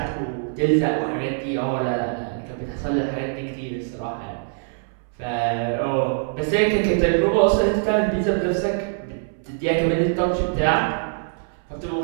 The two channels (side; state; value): left; silent; 62 dB below the other